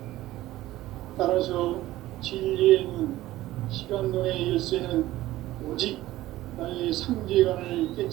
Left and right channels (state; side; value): quieter; left; 15.9 dB